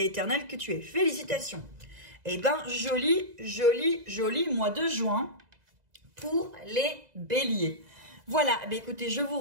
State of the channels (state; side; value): late; left; 2.0 ms